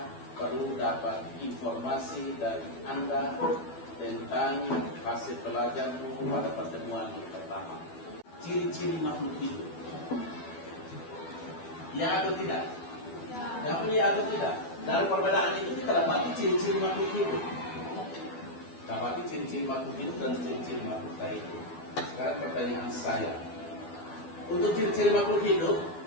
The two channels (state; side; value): late; right; 12 ms